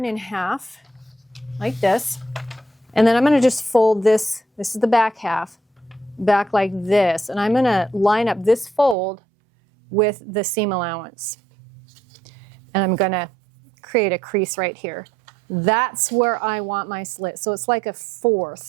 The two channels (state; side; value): drops out; left; at 9.0 s